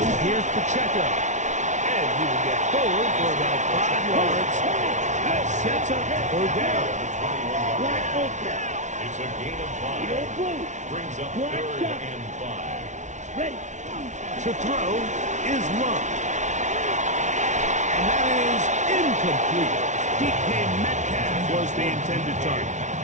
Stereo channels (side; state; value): left; late; 0.35 ms